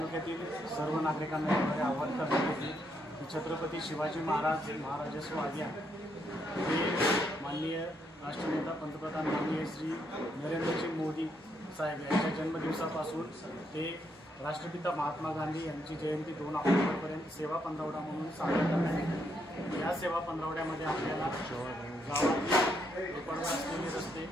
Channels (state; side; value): normal; both; correlation 0.76